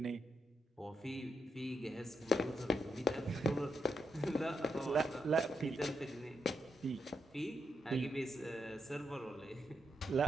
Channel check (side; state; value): both; normal; correlation 0.83